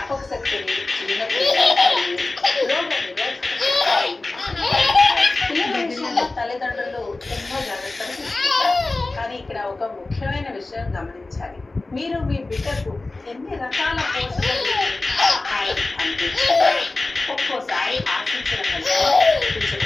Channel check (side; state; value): right; quieter; 3.2 dB